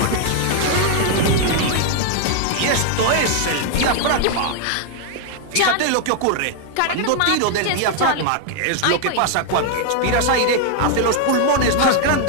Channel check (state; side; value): different; both; correlation 0.00